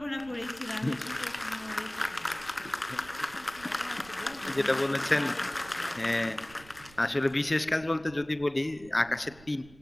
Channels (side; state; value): right; noise; rumble, 22 dB below the sound